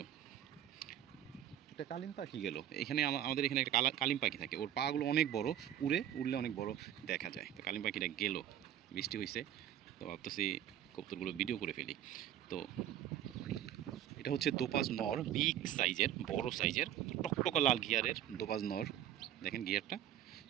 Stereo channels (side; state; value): left; quieter; 11.1 dB